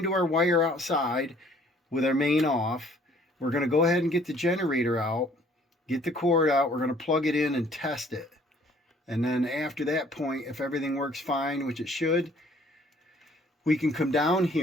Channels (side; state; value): both; normal; correlation 0.58